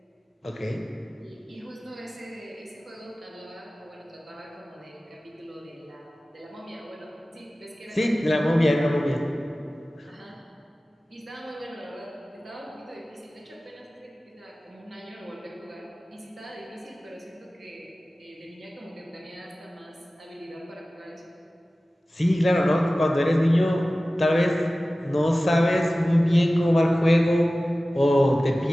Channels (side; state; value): both; normal; correlation 0.97